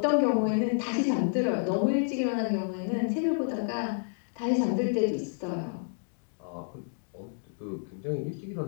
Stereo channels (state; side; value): silent; right; digital silence